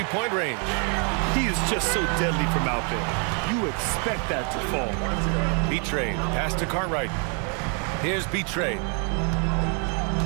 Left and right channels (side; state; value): left; quieter; 38.4 dB